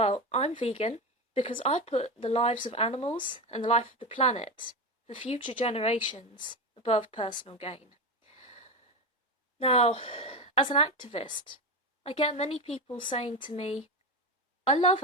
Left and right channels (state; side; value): normal; both; correlation 0.18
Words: I'm vegan because I put the lives of animals and the life of the planet for future generations above personal gain. Now, as an activist, I get many people saying to me, I love